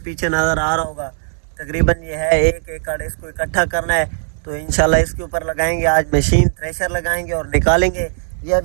नज़र आ रहा होगा तकरीबन ये है 1 एकड़। इसको इकट्ठा करना है तो इंशाल्लाह इसके ऊपर लगाएंगे आज मशीन, थ्रेशर लगाएंगे और निकालेंगे। ये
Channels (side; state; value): left; silent; digital silence